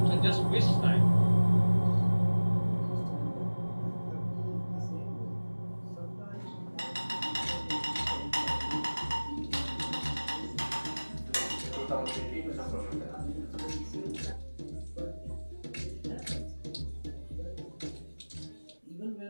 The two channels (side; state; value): both; inverted; correlation -1.00